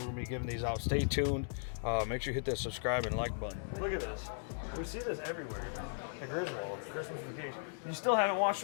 gonna be giving these out. Stay tuned. Make sure you hit that subscribe and like button. Look at this. We see this everywhere. The Griswold, Christmas Vacation. You still haven't watched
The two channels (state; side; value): silent; right; digital silence